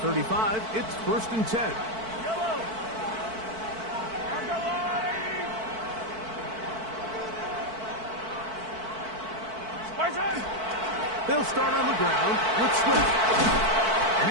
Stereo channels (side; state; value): left; late; 4.5 ms